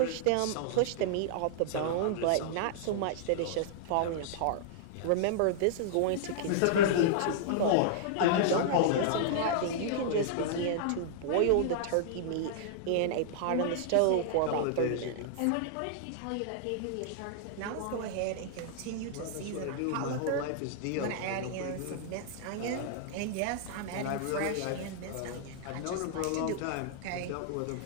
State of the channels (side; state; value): both; different; correlation -0.01